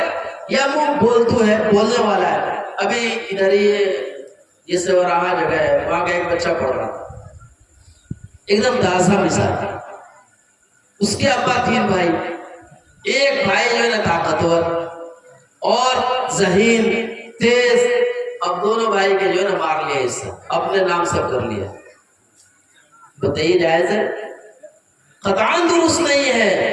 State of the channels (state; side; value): identical; both; correlation 1.00